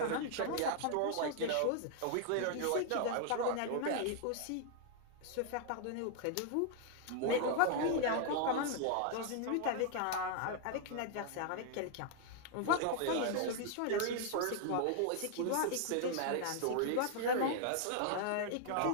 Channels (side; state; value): both; different; correlation 0.00